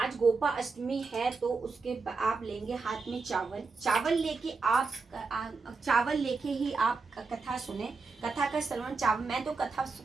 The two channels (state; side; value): quieter; left; 4.3 dB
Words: गोपा अष्टमी है, तो उसके आप लेंगे हाथ में चावल लेके आप चावल लेके ही आप कथा सुने। कथा का श्रवण चावल, मैं तो कथा